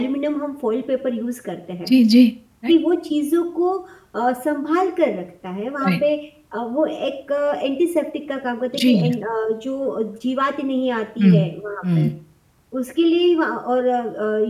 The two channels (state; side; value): identical; both; correlation 1.00